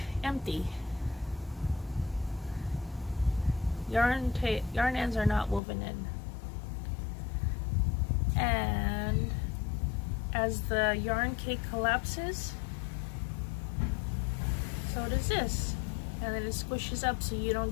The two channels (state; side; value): drops out; right; at 5.6 s